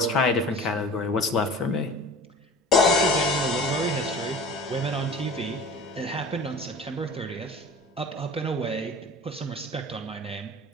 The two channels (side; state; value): both; normal; correlation 0.39